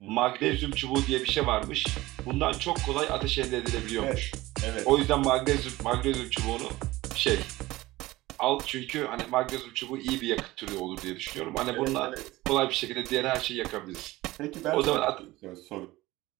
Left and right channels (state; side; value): quieter; left; 18.6 dB